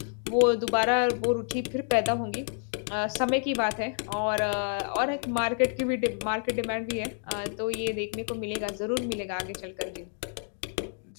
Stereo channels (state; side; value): silent; right; 56 dB below the other